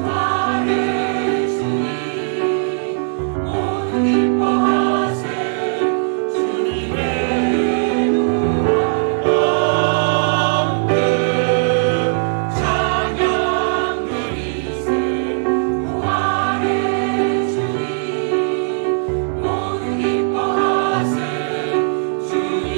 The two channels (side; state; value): left; silent; 67 dB below the other